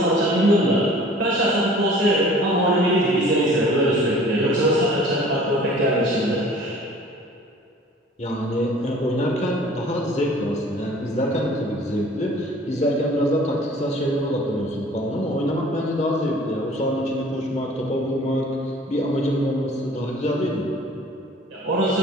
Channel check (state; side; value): normal; both; correlation 0.49